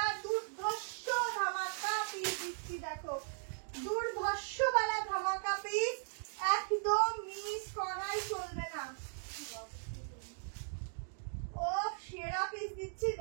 দুর্ধর্ষ ধামাকা পিস দিচ্ছি, দেখো দুর্ধর্ষ वाला ধামাকা পিস, একদম মিস করাই চলবে না। ও সেরা পিস দিচ্ছি,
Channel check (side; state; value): left; silent; digital silence